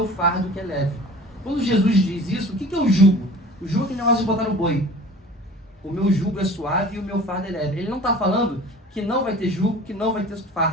fardo que é leve. Quando Jesus diz isso, o que é o jugo? O jugo é aquele negócio de botar no boi. O meu jugo é suave e o meu fardo é leve. Ele não está falando que não vai ter jugo, que não vai ter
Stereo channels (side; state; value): both; normal; correlation 0.43